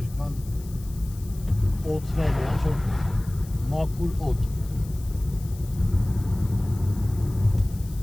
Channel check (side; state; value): left; noise; hiss, 21 dB below the sound